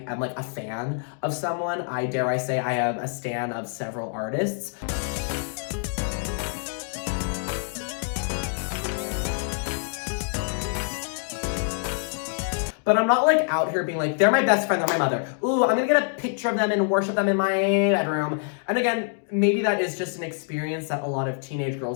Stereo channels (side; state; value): right; silent; 61 dB below the other